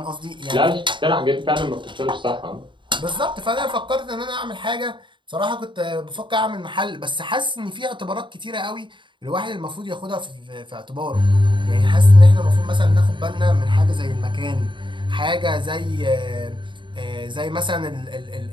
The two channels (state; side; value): late; left; 0.23 ms